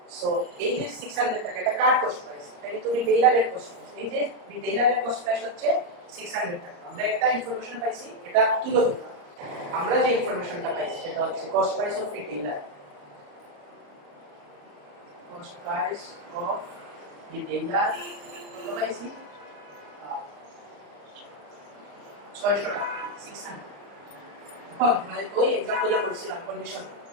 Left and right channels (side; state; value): left; late; 34 ms